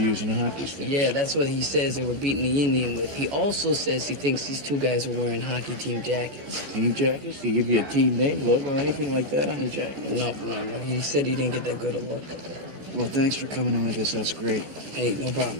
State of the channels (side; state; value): left; late; 14 ms